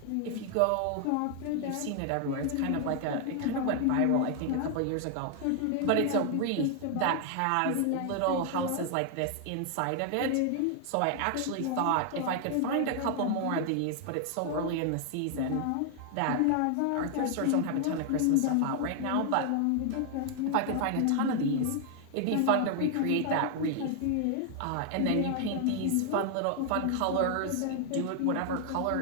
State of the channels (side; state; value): both; different; correlation 0.00